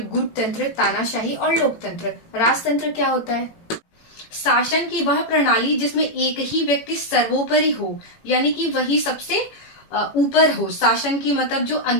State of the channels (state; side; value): late; right; 18 ms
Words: गुटतंत्र, तानाशाही और लोकतंत्र। राजतंत्र क्या होता है? शासन की वह प्रणाली जिसमें एक ही व्यक्ति सर्वोपरि हो, यानी कि वही सबसे ऊपर हो। शासन की मतलब जो